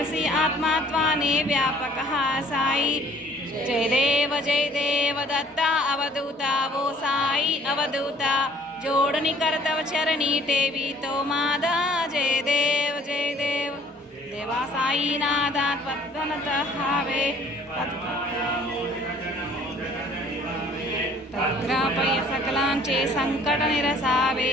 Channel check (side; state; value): both; normal; correlation 0.56